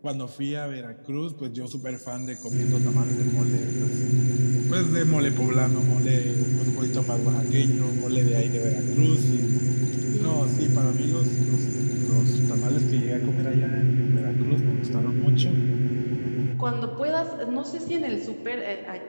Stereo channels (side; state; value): both; inverted; correlation -1.00